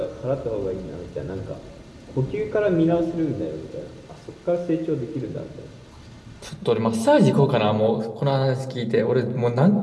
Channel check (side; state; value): both; identical; correlation 1.00